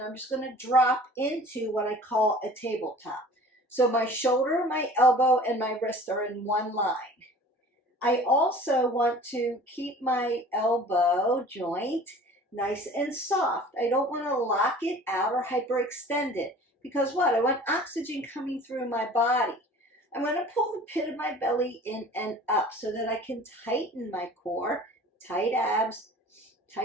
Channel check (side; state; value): both; normal; correlation 0.45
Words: I'm just going to drop into what I call a tabletop. So my shoulder, my elbow, and my wrist are in one line. I also want to keep my elbow joint nice and soft. I don't want to lock it out or hyperextend it. Because what? I want oxygen coming through my body. I'm going to pull the pit of my belly in and up so that I can tighten my core. Tight abs,